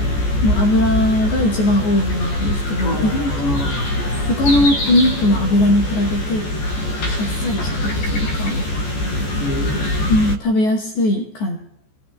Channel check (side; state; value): right; late; 14 ms